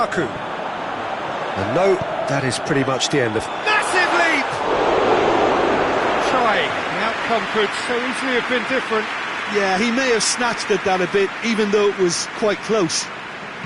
And no, that is pretty much the end of... Massive leap! Trying. The outcome could so easily have been different. Yeah, he may have snatched at that a bit, even though it was quite close.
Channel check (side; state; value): both; identical; correlation 1.00